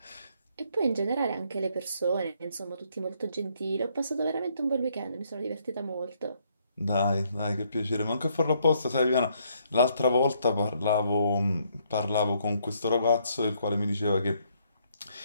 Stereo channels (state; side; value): inverted; both; correlation -0.70